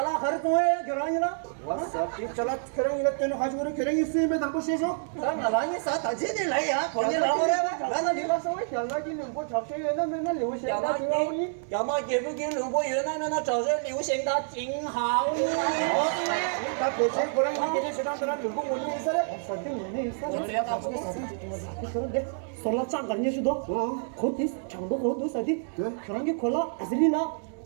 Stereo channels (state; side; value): silent; left; digital silence